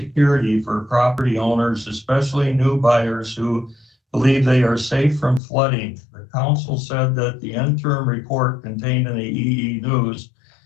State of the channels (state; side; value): drops out; right; at 5.4 s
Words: for property owners, especially new buyers who believe they are safe from flooding. The council said that the interim report contained in the EE News